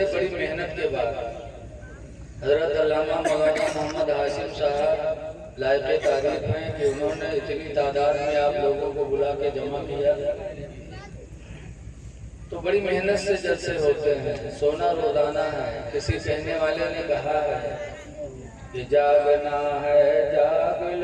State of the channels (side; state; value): both; identical; correlation 1.00